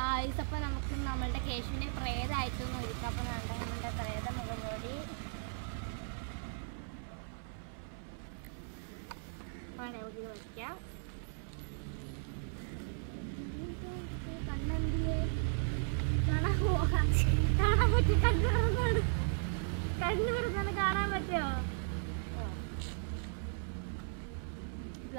അപ്പോൾ നമുക്ക് നമ്മളുടെ കേശുവിനെ പ്രേതമായിട്ടൊന്നും ഒരുക്കാം. അപ്പോൾ നമ്മളുടെ പ്രേത മുഖംമൂടി നമുക്ക് വയ്ക്കാം. കണ്ണെന്തിയെ കാണാൻ പോകാൻ പറ്റും. കണ്ണു തുറന്നാണ് കാണാൻ പറ്റുമോ?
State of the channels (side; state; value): left; silent; 54 dB below the other